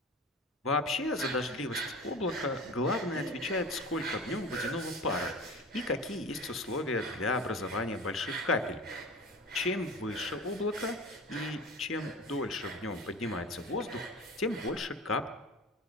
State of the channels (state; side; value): normal; both; correlation 0.34